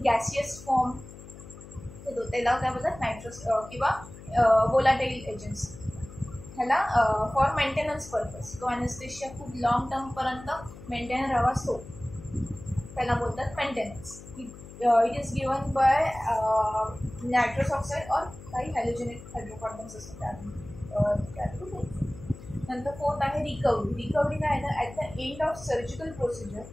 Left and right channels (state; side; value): noise; left; hum, 16 dB below the sound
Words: गॅसियस फॉर्म देतो. त्याला काय बोलतात नायट्रस किंवा वोलाटाईल एजंट्स ह्याला फॉर मेंटेनन्स पर्पज तो ॲनेस्थेशिया खूप लॉंग टर्मपर्यंत मेंटेन राहावा असतो त्याला बोलतात maintenance. It is given by nitrous oxide और काही हॅलोजेनेट हायड्रोकार्बन्स असतात त्यातून. नंतर फोर्थ आहे रिकव्हरी. रिकव्हरी काय आहे, at the end of surgical procedure